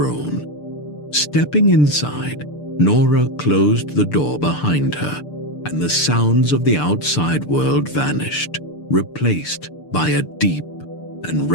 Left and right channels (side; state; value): right; late; 6.8 ms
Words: Stepping inside, Nora closed the door behind her, and the sounds of the outside world vanished, replaced by a deep and